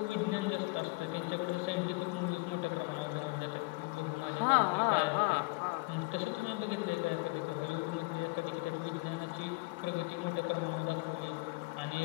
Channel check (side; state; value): right; quieter; 26.0 dB